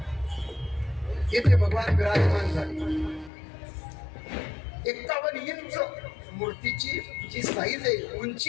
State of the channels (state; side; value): drops out; right; at 3.3 s